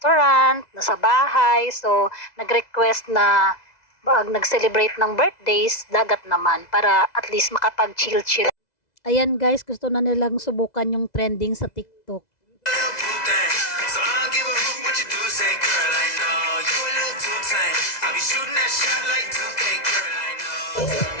nasa bahay. So, nag-request na pag nag-celebrate ng birthdays, dagat naman. Para at least makapag-chill-chill. Ayan guys, gusto na nilang subukan yung trending sa TikTok. So I don't give a hoot what you do, say girl, I know you a little too tame. I'll be shooting that shot like 2K, girl, I know.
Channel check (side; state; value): right; late; 2.0 ms